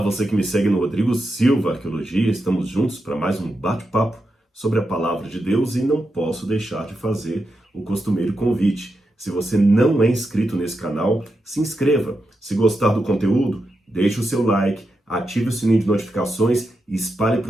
você que me segue no Rodrigo Silva Arqueologia, estamos juntos para mais um bate-papo sobre a Palavra de Deus e não posso deixar de fazer o costumeiro convite. Se você não é inscrito nesse canal, se inscreva. Se gostar do conteúdo, deixe o seu like, ative o sininho de notificações e espalhe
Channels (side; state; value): both; normal; correlation 0.87